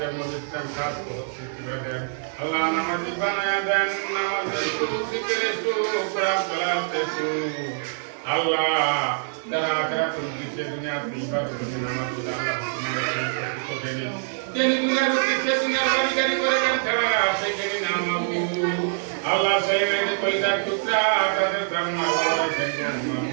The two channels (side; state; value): left; silent; digital silence